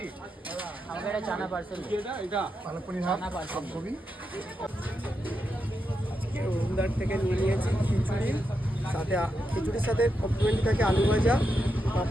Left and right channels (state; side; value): normal; both; correlation 0.85